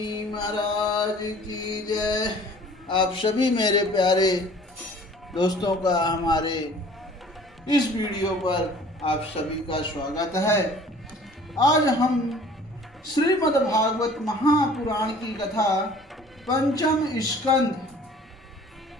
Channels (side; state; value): both; normal; correlation 0.50